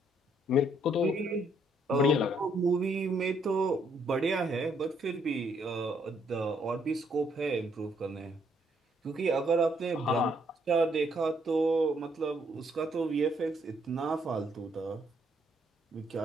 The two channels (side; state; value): both; normal; correlation 0.70